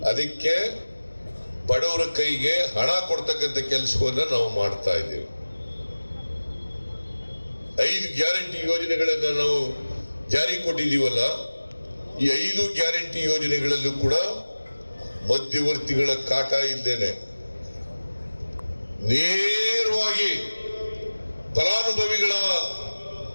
ಅದಕ್ಕೆ ಬಡವರ ಕೈಗೆ ಹಣ ಕೊಡ್ತಕ್ಕಂಥ ಕೆಲಸವನ್ನ ನಾವು ಮಾಡ್ತಾ ಇದ್ದೇವೆ. 5 ಗ್ಯಾರಂಟಿ ಯೋಜನೆಗಳನ್ನ ನಾವು ಜಾರಿ ಕೊಟ್ಟಿದ್ದೀವಲ್ಲ, ಈ 5 ಗ್ಯಾರಂಟಿ ಯೋಜನೆಗಳಲ್ಲೂ ಕೂಡ ಮಧ್ಯವರ್ತಿಗಳ ಕಾಟ ಇದ್ದೇನೆ. ನೇರವಾಗಿ ಫಲಾನುಭವಿಗಳ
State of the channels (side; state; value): both; inverted; correlation -1.00